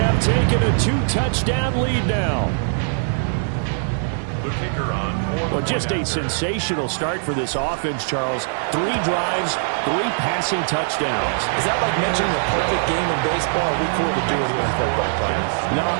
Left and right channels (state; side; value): silent; left; 65 dB below the other